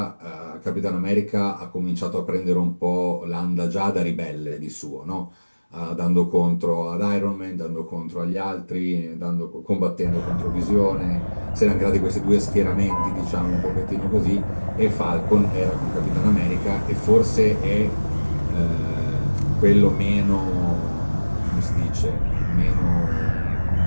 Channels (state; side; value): inverted; both; correlation -1.00